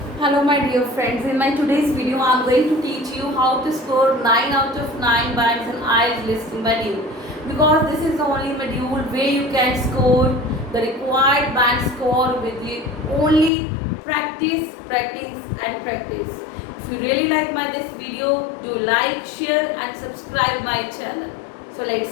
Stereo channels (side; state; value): right; drops out; at 13.5 s